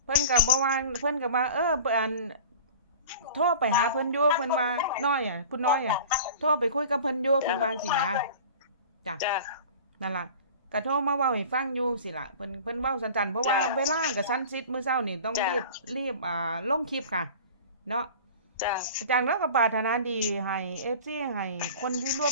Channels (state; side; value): inverted; both; correlation -0.39